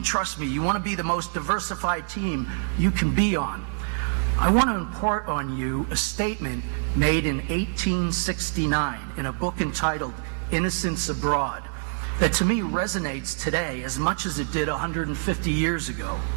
trust me, you want to be the most diversified team you can be on. I want to impart on you a statement made in 1869 in a book entitled Innocents Abroad that to me resonates today as much as it did 150 years ago.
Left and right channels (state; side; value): silent; left; digital silence